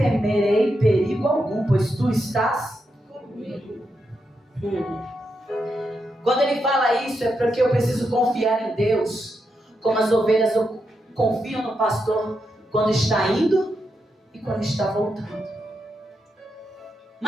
perigo algum, pois tu estás comigo. Quando ele fala isso, é porque eu preciso confiar em Deus, como as ovelhas confiam no pastor quando está indo e quando está voltando.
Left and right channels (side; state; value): both; normal; correlation 0.84